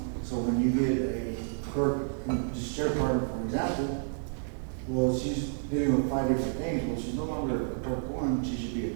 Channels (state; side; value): silent; left; digital silence